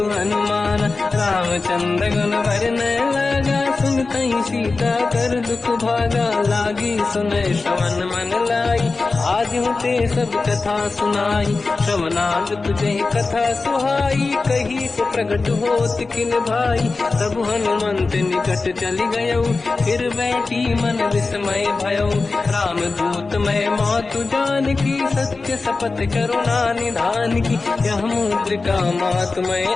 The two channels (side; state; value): right; quieter; 3.8 dB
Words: हनुमान, रामचंद्र गुण वर्णय लगा, सुनतहि सीता कर दुख भागा, लागी सुनय श्रवण मन लाई, आज होते सब कथा सुनाई, श्रवणाद तुझे कथा सुहाई, कही से प्रगट होत किन भाई, तब हनुमंत निकट चली गयो, फिर बैठी मन विस्मय भयो, राम दूत मैं मातु जान की, सत्य शपथ करुणा निधान की, यह मुद्रिका मात मैं